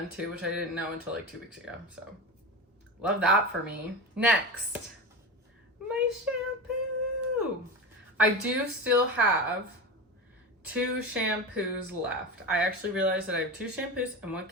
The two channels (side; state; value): both; normal; correlation 0.24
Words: too, which I didn't know until like 2 weeks ago, so love that for me. Next, my shampoo. I do still have 2 shampoos left. I actually realized that I have 2 shampoos and 1